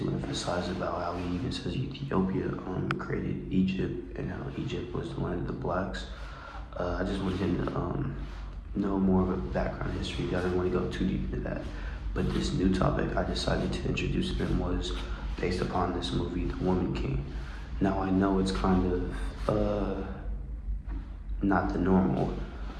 emphasize about how he even says Ethiopia created Egypt, and how Egypt was the land of the blacks. I just wanted him to know more of a background history. I didn't want to go too deep into that. But this new topic I decided to introduce him was based upon this movie, The Woman King. Now I know it's kind of not the normal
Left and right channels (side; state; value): both; identical; correlation 1.00